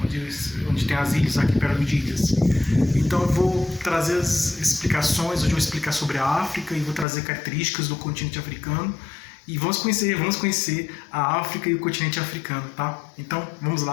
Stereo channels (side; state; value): right; drops out; at 7.1 s